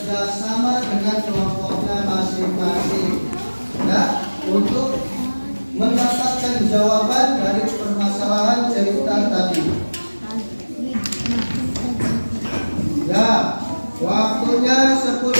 sama dengan kelompoknya masing-masing ya, untuk mendapatkan jawaban dari permasalahan cerita tadi. Ya, waktunya 10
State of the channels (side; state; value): both; inverted; correlation -1.00